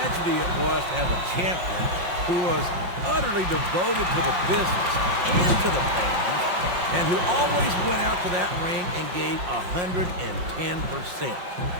it was to have a champion who was utterly devoted to the business and to the fans, and who always went out to that ring and gave 110%.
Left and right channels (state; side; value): late; left; 5.6 ms